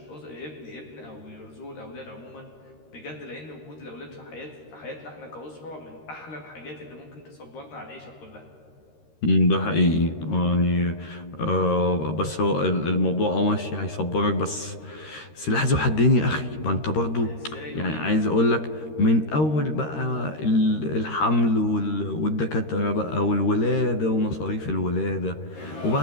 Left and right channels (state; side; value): late; right; 13 ms